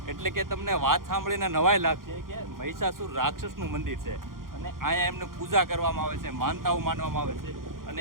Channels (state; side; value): late; left; 0.91 ms